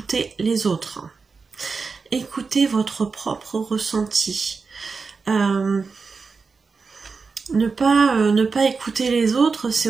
les autres. Écoutez votre propre ressenti. Ne pas écouter les autres, c'est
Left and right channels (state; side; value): quieter; left; 4.7 dB